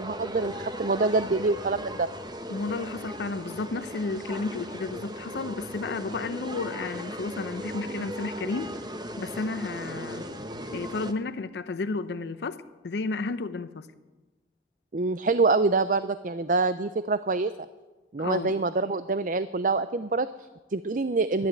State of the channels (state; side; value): normal; both; correlation 0.09